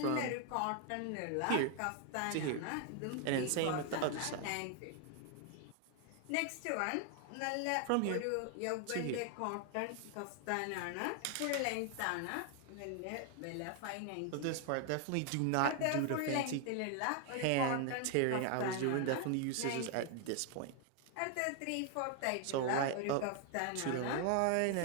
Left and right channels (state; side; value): different; both; correlation 0.00